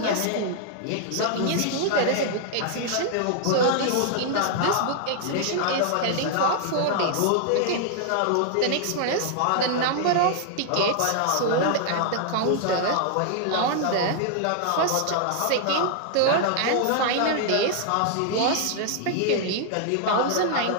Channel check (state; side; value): different; both; correlation 0.00